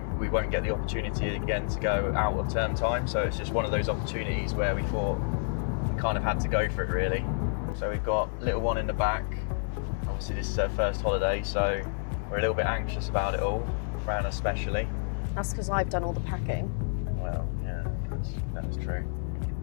won't get the opportunity again to go out of term time, so it's just one of those opportunities where we thought we kind of had to go for it really. So we've got little one in the back. Obviously this is her first holiday, so we're a little bit anxious about it all, Fran especially. That's because I've done all the packing. Well, yeah, that's true.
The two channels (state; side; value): silent; right; digital silence